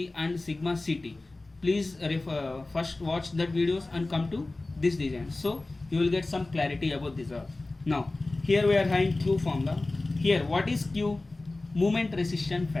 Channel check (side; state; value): right; quieter; 3.1 dB